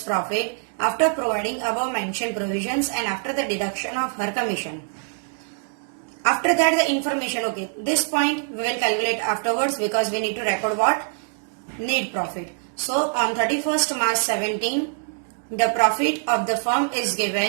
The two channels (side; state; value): left; silent; digital silence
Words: profit after providing above mentioned provisions and after the deduction of her commission. After that the information, okay, this point we will calculate afterwards because we need to record what? Net profit. So on 31st March 17, the profit of the firm is